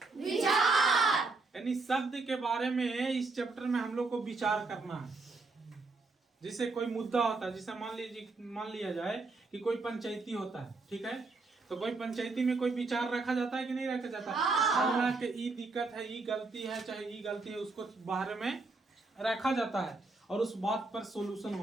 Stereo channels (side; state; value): left; quieter; 3.7 dB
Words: विचार यानी शब्द के बारे में इस चैप्टर में हम लोग को विचार करना है। जैसे कोई मुद्दा होता है, जैसे मान लिया जाए कि कोई पंचायती होता है, ठीक है, तो कोई पंचायती में कोई विचार रखा जाता है कि नहीं रखा जाता है कि ई दिक्कत है, ई गलती है, चाहे ई गलती है, उसको बाहर में रखा जाता है और उस बात पर सॉल्यूशन